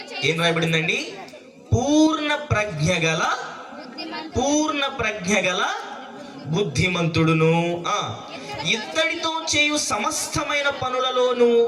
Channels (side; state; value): both; identical; correlation 1.00